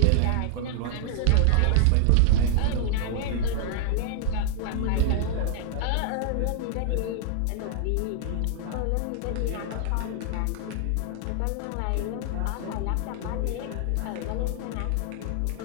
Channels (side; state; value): both; different; correlation -0.01